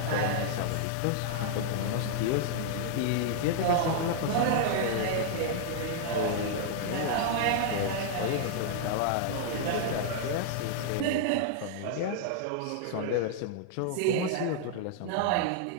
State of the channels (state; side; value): different; both; correlation -0.01